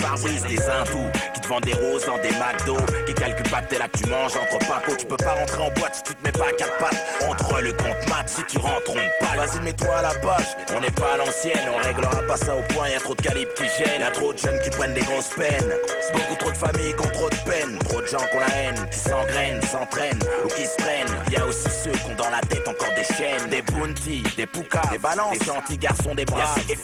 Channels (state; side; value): identical; both; correlation 1.00